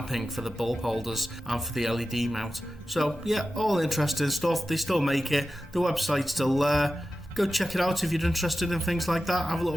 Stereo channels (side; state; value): both; normal; correlation 0.93